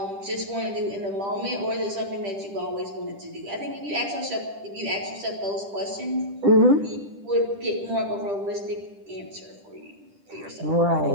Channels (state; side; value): late; left; 10 ms